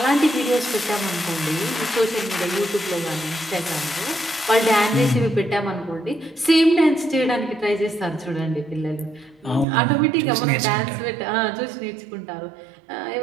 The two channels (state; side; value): drops out; left; at 9.7 s